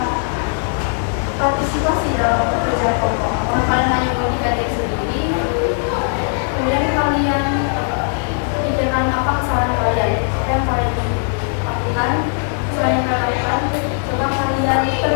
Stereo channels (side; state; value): right; silent; 58 dB below the other